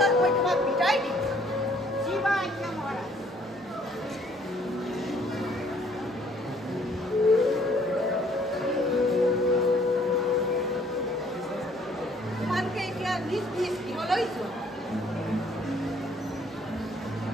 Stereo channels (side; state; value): both; normal; correlation 0.62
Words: মই তোমাক বিদায় দিম। জীৱা আজ্ঞা মহাৰাজ। তোমালোকে এতিয়া নিজ নিজ গৃহলৈ যোৱা।